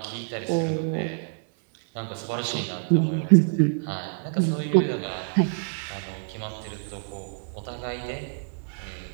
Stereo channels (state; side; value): silent; left; digital silence